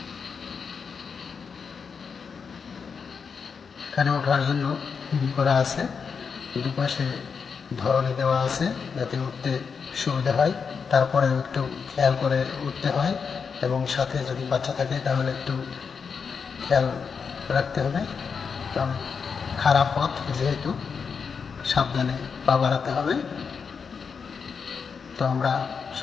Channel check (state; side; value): quieter; right; 5.9 dB